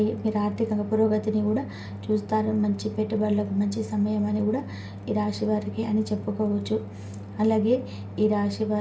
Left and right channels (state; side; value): identical; both; correlation 1.00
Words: మీరు ఆర్థికంగా పురోగతిని కూడా చూస్తారు. మంచి పెట్టుబడులకు మంచి సమయం అని కూడా ఈ రాశి వారికి అని చెప్పుకోవచ్చు. అలాగే ఈ రాశి